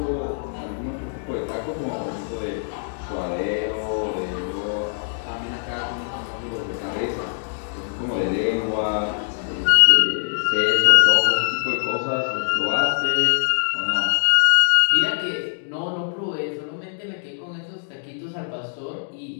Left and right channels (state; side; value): silent; right; digital silence